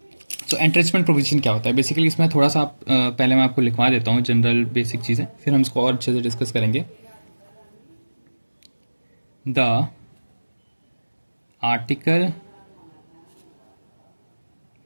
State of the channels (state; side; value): inverted; both; correlation -1.00